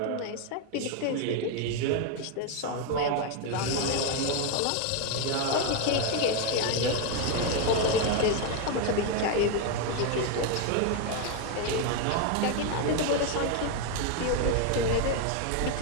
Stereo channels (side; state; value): both; different; correlation 0.01